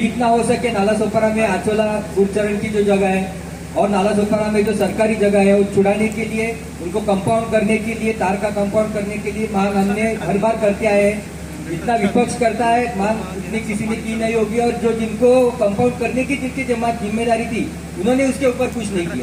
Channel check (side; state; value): both; identical; correlation 1.00